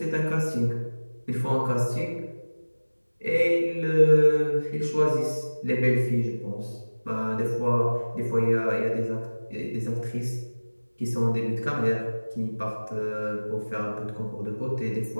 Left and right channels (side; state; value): both; inverted; correlation -1.00